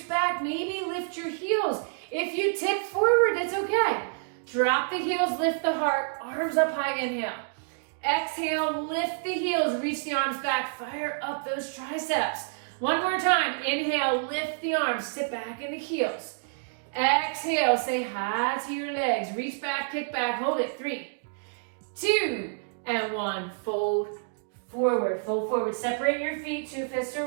back. Maybe lift your heels. If you tip forward, that's okay. Drop the heels, lift the heart, arms up high, inhale. Exhale, lift the heels, reach the arms back, fire up those triceps. One more time, inhale, lift the arms, sit back in the heels. Exhale, say hi to your legs, reach back, kick back, hold it. 3, 2, and 1. Fold forward, fold forward. Separate your feet, 2 fists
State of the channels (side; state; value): left; silent; digital silence